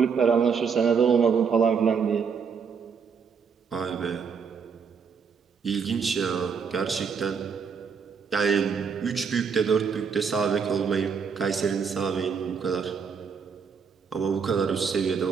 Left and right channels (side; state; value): left; quieter; 6.1 dB